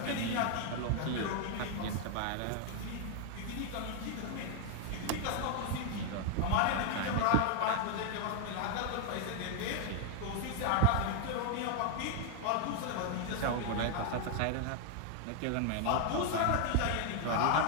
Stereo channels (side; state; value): both; different; correlation 0.00